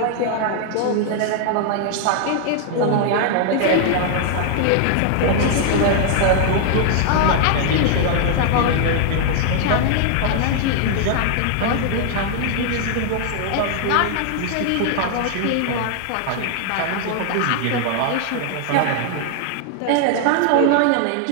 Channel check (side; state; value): both; different; correlation 0.00